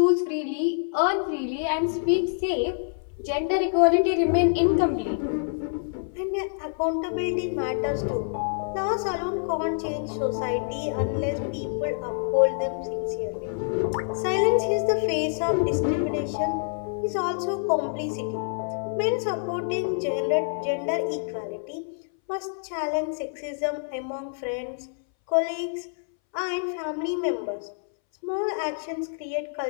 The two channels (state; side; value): silent; right; 60 dB below the other